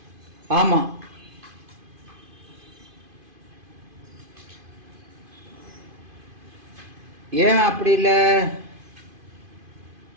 ஆமா. ஏன் அப்படி இல்லை?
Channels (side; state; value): left; late; 2.5 ms